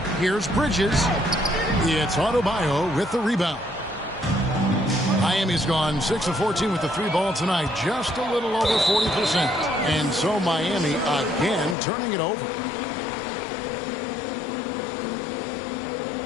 Here's Bridges. It's Adebayo with the rebound. Miami's gone 6 of 14 with the 3 ball tonight, just a little over 40%. And so Miami again turning it over.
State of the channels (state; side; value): drops out; right; at 11.8 s